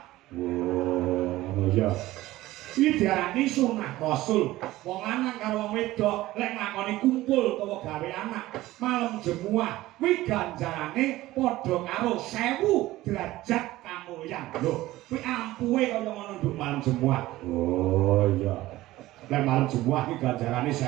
Ngono ya. Iki diarani sunah Rasul. Wong lanang karo wong wedok lek nglakoni kumpul utawa gawe anak malam Jumat kuwi ganjarane padha karo 1000 derajat kamulyan. Lho, kuwi ampuhe kaya ngono nduk malam Jumat. Oh iya. Lek malam Jumat iki ganjarane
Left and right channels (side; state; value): left; quieter; 16.9 dB